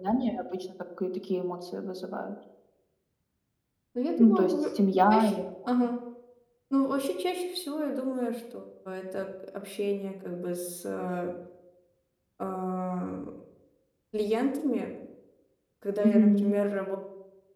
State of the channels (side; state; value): both; identical; correlation 1.00